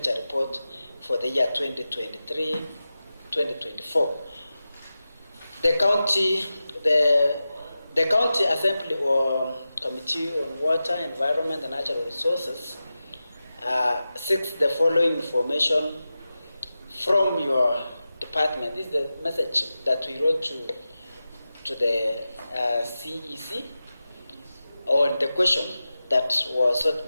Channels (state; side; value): inverted; both; correlation -0.93